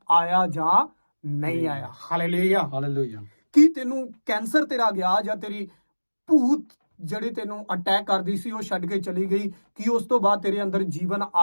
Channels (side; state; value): both; inverted; correlation -1.00